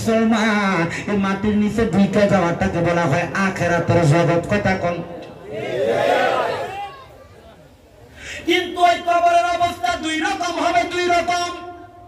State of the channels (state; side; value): identical; both; correlation 1.00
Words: এই মাটির নিচে ঢুকে যাওয়াটাকে বলা হয় আখিরাতের জগৎ। কথা কোন? কিন্তু ওই কবরের অবস্থা 2 রকম হবে, 2 রকম।